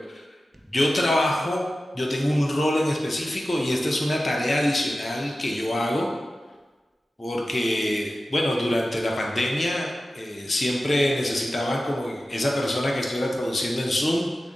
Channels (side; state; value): both; normal; correlation 0.95